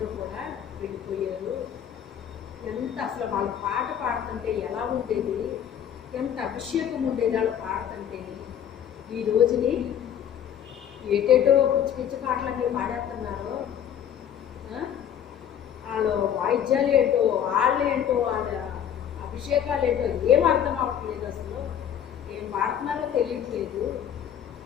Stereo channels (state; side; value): quieter; right; 9.3 dB